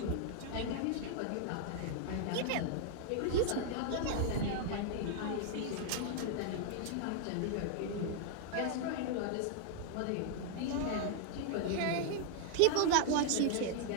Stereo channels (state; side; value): different; both; correlation -0.01